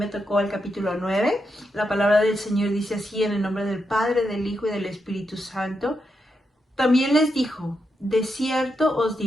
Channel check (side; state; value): both; normal; correlation 0.84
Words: tocó el capítulo 9. La palabra del Señor dice así: en el nombre del Padre, del Hijo y del Espíritu Santo. También les dijo: de cierto os